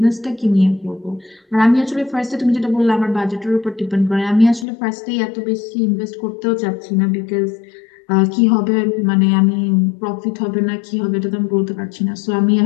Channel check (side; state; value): right; drops out; at 4.7 s